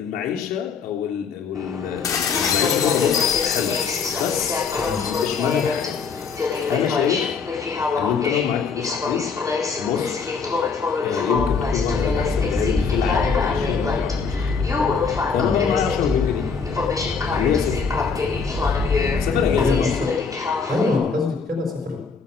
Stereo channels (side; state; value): right; quieter; 5.4 dB